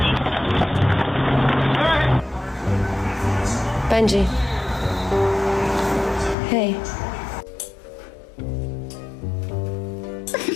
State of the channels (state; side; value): drops out; right; at 6.4 s